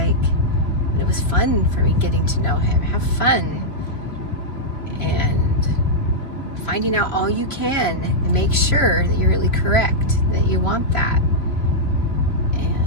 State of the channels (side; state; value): right; late; 3.1 ms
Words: and it was fun for me getting to know him. Have fun and finding out all you can, and make sure that you're really correct, that you want that.